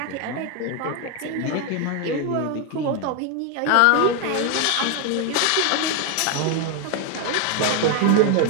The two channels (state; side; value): different; both; correlation 0.01